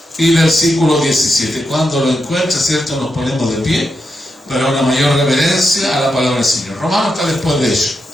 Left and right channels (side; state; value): both; normal; correlation 0.85